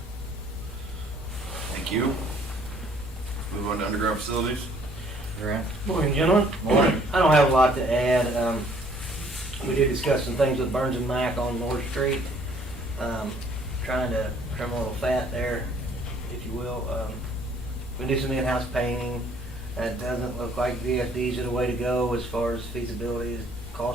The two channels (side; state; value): both; normal; correlation 0.60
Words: Thank you. Move on to underground facilities. Grant? Morning, gentlemen. Morning. I don't have a lot to add. We did discuss some things with Burns and Mac on North Street. Trying to trim a little fat there, if you will. We do some in-house painting. It doesn't look like VFDs are the way to go as far as feasibility,